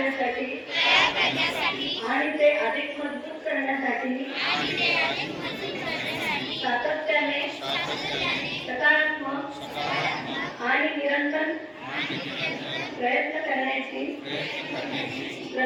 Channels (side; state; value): both; identical; correlation 1.00